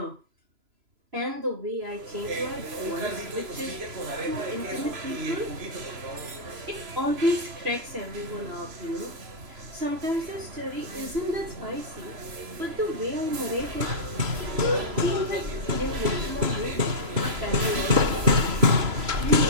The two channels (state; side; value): late; left; 3.0 ms